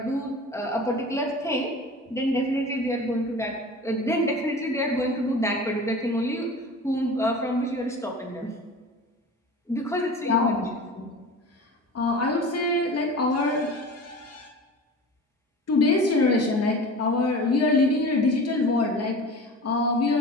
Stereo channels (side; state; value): both; normal; correlation 0.36